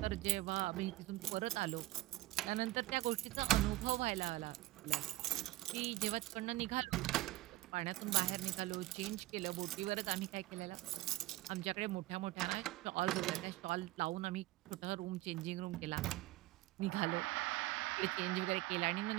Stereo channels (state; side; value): quieter; left; 17.9 dB